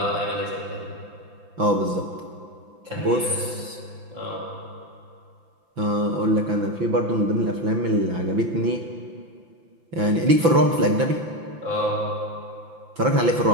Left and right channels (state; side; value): late; left; 5.9 ms